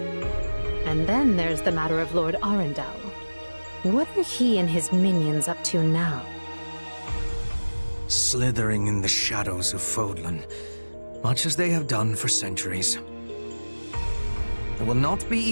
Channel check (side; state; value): both; inverted; correlation -1.00